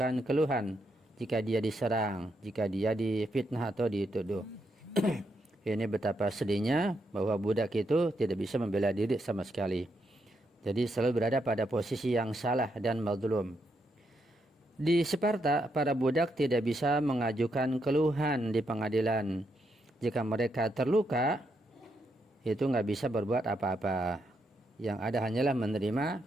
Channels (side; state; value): both; normal; correlation 0.79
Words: keluhan jika dia diserang, jika dia difitnah atau dituduh. Ini betapa sedihnya bahwa budak itu tidak bisa membela diri sama sekali. Jadi selalu berada pada posisi yang salah dan mazlum. Di Sparta, para budak tidak bisa mengajukan keluhan di pengadilan. Jika mereka terluka, itu nggak bisa berbuat apa-apa. Yang ada hanyalah